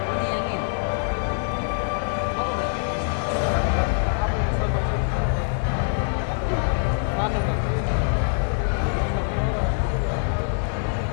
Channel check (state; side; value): silent; right; 62 dB below the other